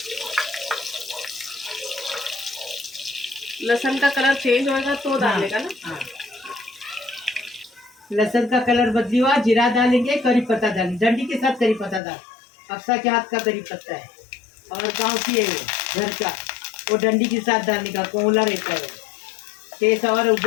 लहसुन का कलर चेंज होएगा तो डालेगा ना। हाँ। लहसुन का कलर बदली हुआ, जीरा डालेंगे, करी पत्ता डालेंगे, डंडी के साथ करी पत्ता डाल। अक्सा के हाथ का करी पत्ता है, और गांव की है घर का, वो डंडी के साथ डालने का, कोला रहता है, टेस्ट और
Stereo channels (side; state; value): right; drops out; at 12.0 s